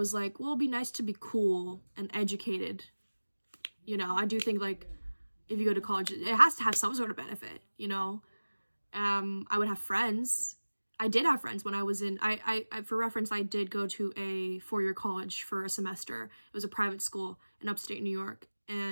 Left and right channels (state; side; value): inverted; both; correlation -1.00